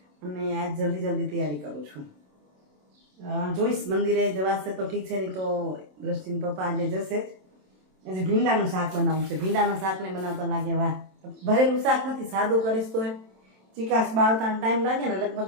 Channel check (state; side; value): late; left; 27 ms